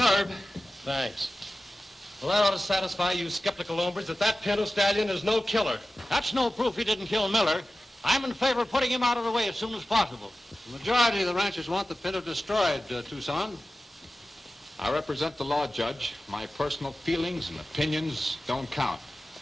Thanks. Well, that ought to satisfy you skeptical hombres that Pinto Stallion is no killer. That's no proof he didn't kill Miller. I'm in favor of putting him out of the way as soon as possible. The majority of the ranchers want the Pinto destroyed, Tucson. I represent the law, Judge. My personal feelings and opinions don't count.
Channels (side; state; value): both; normal; correlation 0.95